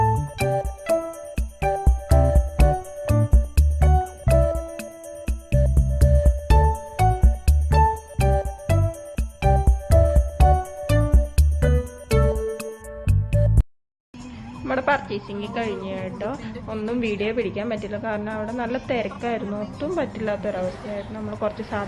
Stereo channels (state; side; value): identical; both; correlation 1.00